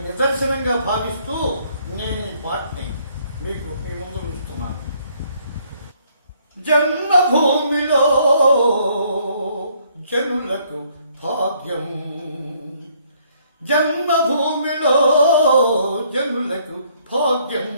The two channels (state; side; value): inverted; both; correlation -0.66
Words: నిదర్శనంగా భావిస్తూ నేను ఈ పాటని మీకు మీ ముందు ఉంచుతున్నాను. జన్మభూమిలో జనులకు భాగ్యం, జన్మభూమిలో జనులకు భాగ్యం,